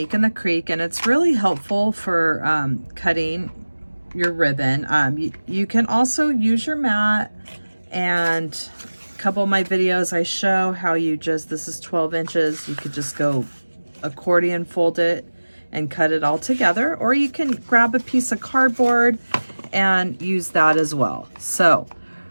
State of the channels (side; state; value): both; inverted; correlation -1.00